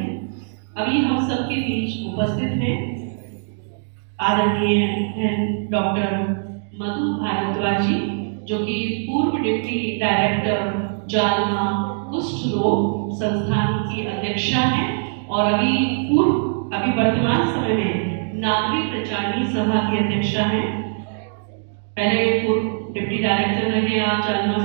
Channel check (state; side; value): silent; left; digital silence